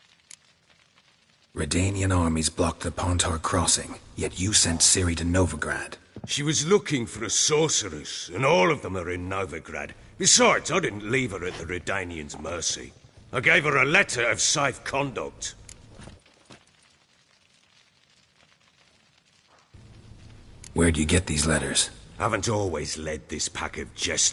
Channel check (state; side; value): identical; both; correlation 1.00